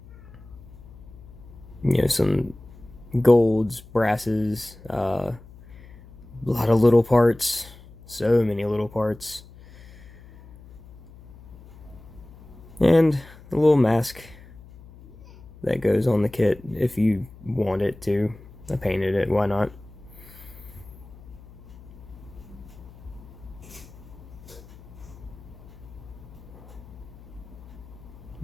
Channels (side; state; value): left; noise; hum, 20 dB below the sound